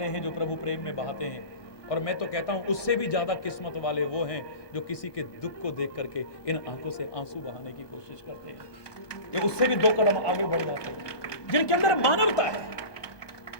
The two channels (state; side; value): late; right; 1.2 ms